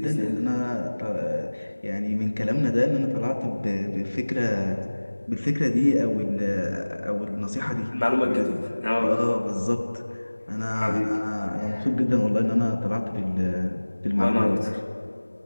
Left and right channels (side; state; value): both; inverted; correlation -1.00